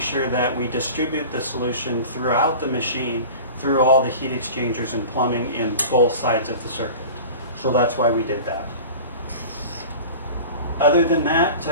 that we distribute the solution throughout the machine through all the heat exchangers and plumbing in both sides of the circuit. So that's why we did that. Other than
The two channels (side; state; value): both; inverted; correlation -0.38